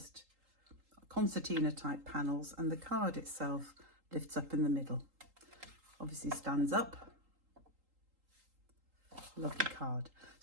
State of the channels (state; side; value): late; left; 3.8 ms